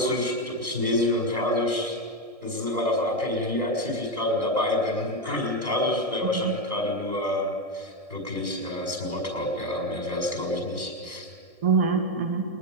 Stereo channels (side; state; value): left; late; 1.7 ms